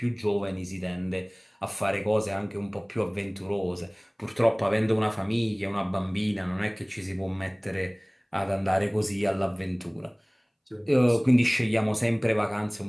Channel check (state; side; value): identical; both; correlation 1.00